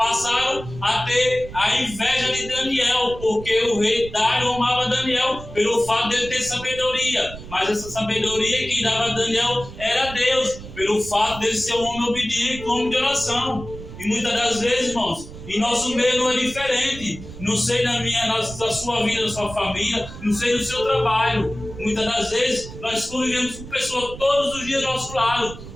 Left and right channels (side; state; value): right; noise; rumble, 13 dB below the sound